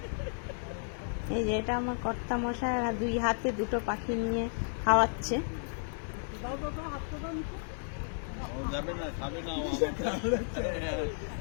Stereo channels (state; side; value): silent; right; digital silence